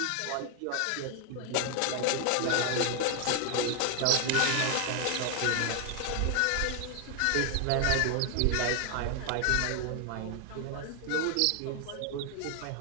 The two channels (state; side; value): different; both; correlation 0.01